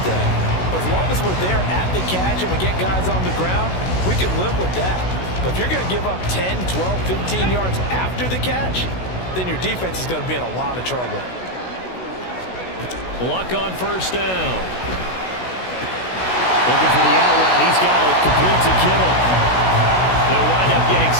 thing. But as long as we're there at the catch and we get guys on the ground, we can live with that. But if you're going to give up 10, 12, 15 yards after the catch, then your defense is going to be in a lot of trouble. Luck on first down. Looking for the out route. He's got it. Complete to Kittle. They'll wind up getting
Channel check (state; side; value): late; right; 16 ms